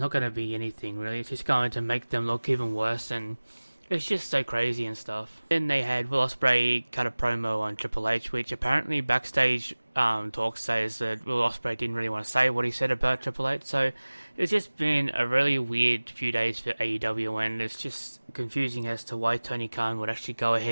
going to be anything really. It's just going to make them look even worse, and it's just so crazy and stuff. Then they had Will Ospreay cut a promo on Triple H, which apparently backstage talk says that Will Ospreay didn't really want to say what he said about Triple H. So it's just been a really weird few days for AEW, and it's just confusing as to why Tony Khan would actually go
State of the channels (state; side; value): inverted; both; correlation -1.00